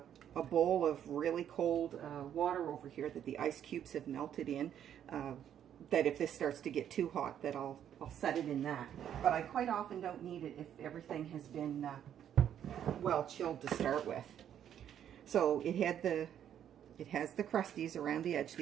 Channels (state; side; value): quieter; left; 9.8 dB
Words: bowl of really cold water over here that the ice cubes have melted in, that if this starts to get too hot, that I'll set it in that. But I quite often don't need it if everything has been well chilled to start with. So it has the crusties around the edge,